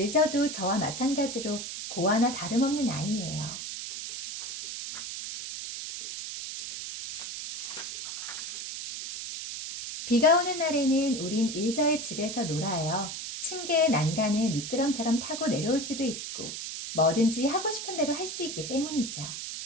저와 마찬가지로 고아나 다름없는 아이예요. 비가 오는 날에는 우린 일저의 집에서 놀아요. 층계의 난간을 미끄럼처럼 타고 내려올 수도 있고 뭐든지 하고 싶은 대로 할 수 있기 때문이죠.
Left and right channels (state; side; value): noise; right; hiss, 7 dB below the sound